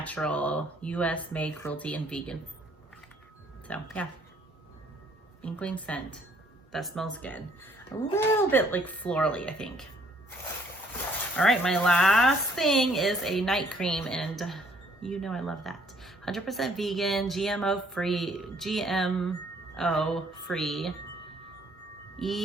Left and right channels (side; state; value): both; normal; correlation 0.63